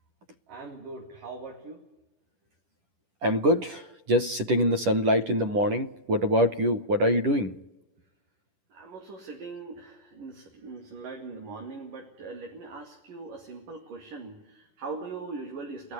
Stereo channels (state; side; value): late; left; 10 ms